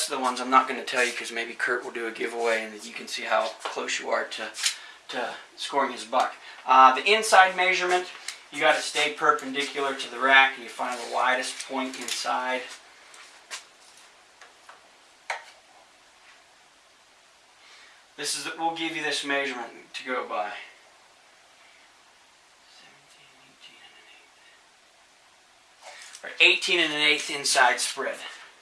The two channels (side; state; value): both; identical; correlation 1.00